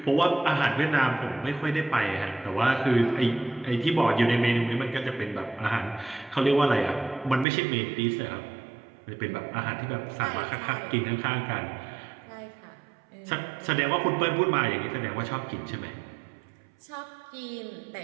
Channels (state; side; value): drops out; left; at 7.5 s